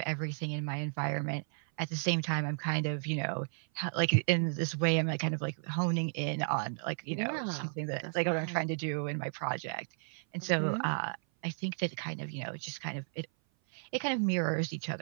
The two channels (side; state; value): left; silent; 55 dB below the other